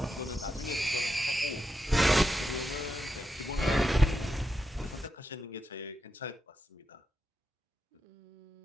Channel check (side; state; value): both; normal; correlation 0.86